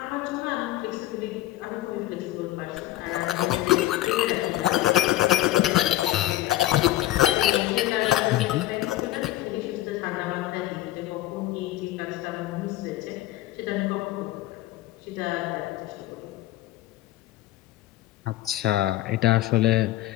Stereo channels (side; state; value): right; quieter; 15.2 dB